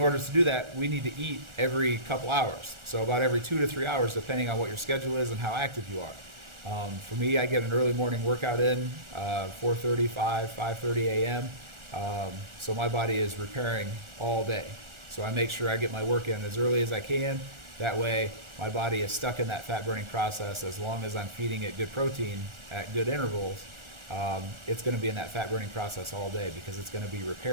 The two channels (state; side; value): late; left; 1.4 ms